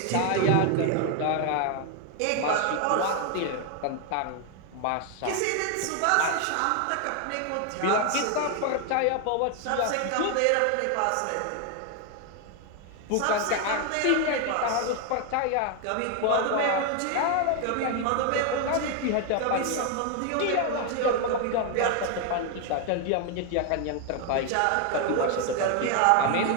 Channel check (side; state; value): both; different; correlation 0.01